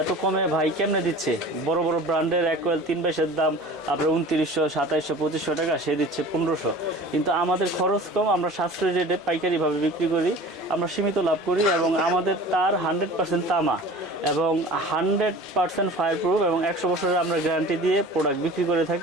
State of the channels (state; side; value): normal; both; correlation 0.41